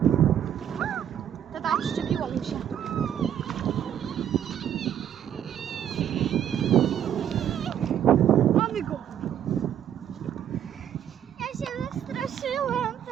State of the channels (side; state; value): left; quieter; 9.8 dB